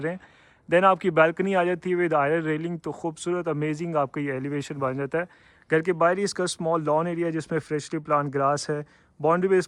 रहे हैं। देन आपकी बालकनी आ जाती है विद आयरन रेलिंग, तो खूबसूरत अमेजिंग आपका ये एलिवेशन बन जाता है। घर के बाहर ही इसका स्मॉल लॉन एरिया जिसमें फ्रेशली प्लांट ग्रास है। बाउंड्री पे इस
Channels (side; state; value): both; identical; correlation 1.00